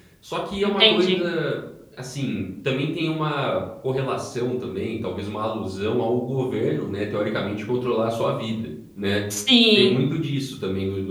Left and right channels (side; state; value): both; identical; correlation 1.00